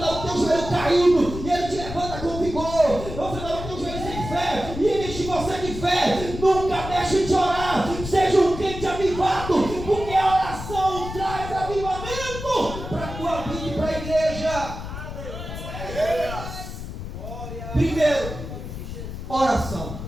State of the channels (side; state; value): left; noise; rumble, 9 dB below the sound